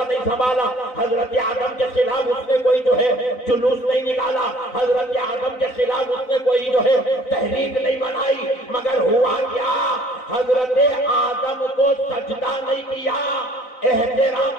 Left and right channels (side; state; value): right; late; 3.9 ms